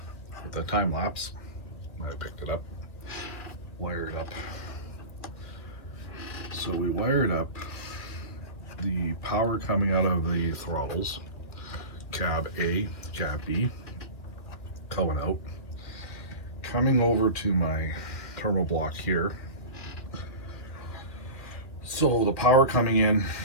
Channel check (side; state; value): right; late; 2.2 ms